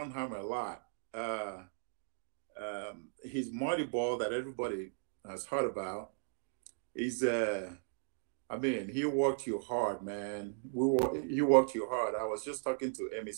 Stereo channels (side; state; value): left; silent; digital silence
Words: a lot. His Marty ball that everybody has heard about is, I mean, he worked you hard, man. He worked you hard. I was just talking to Emmy